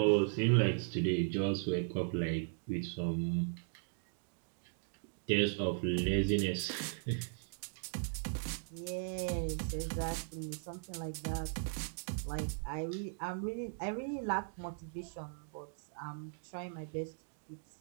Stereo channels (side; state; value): left; silent; digital silence